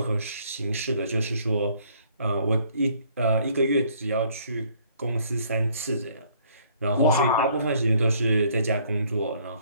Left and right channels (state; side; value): inverted; both; correlation -0.62